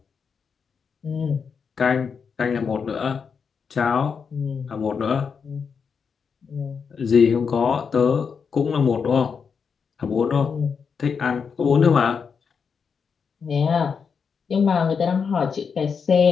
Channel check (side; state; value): right; quieter; 6.1 dB